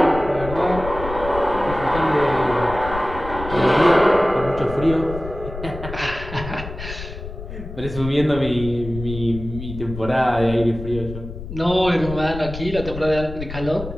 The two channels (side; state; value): left; noise; rumble, 10 dB below the sound